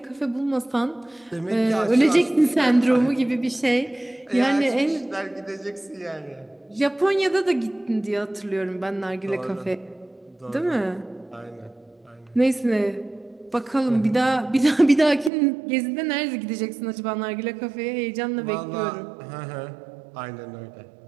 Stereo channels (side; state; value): left; drops out; at 15.3 s